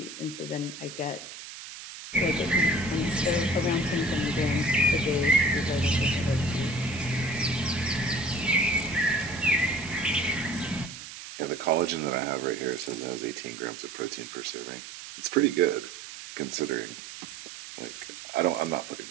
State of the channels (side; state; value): right; noise; hiss, 12 dB below the sound